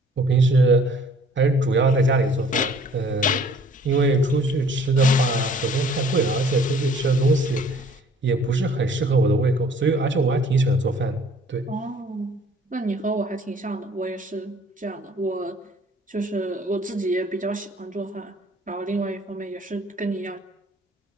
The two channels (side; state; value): both; normal; correlation 0.55